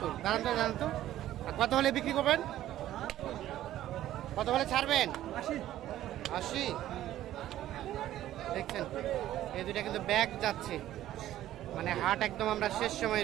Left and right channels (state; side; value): quieter; left; 13.3 dB